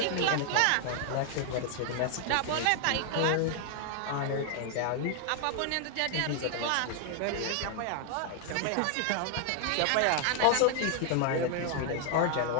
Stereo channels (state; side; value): different; both; correlation 0.00